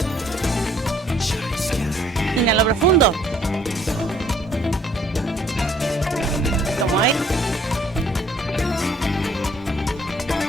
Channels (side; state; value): both; normal; correlation 0.62